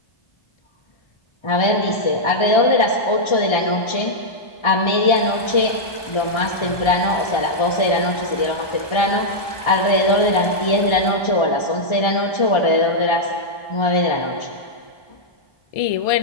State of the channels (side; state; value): right; late; 1.2 ms